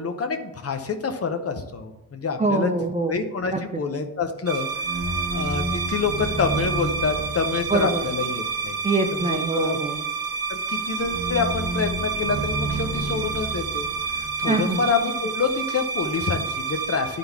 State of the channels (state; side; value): normal; both; correlation 0.01